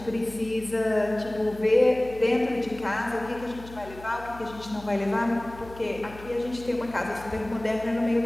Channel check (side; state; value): left; noise; hum, 17 dB below the sound